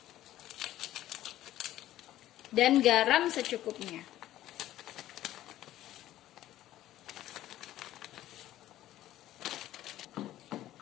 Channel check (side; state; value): right; quieter; 13.8 dB